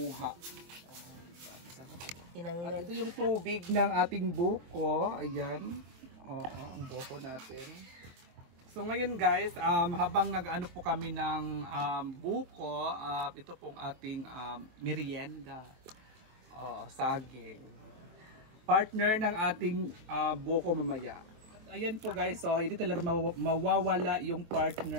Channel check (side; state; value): left; late; 23 ms